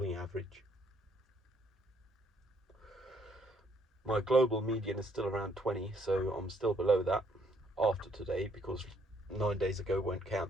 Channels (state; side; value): normal; both; correlation 0.68